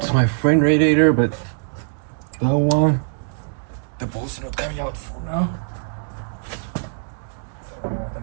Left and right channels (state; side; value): silent; left; digital silence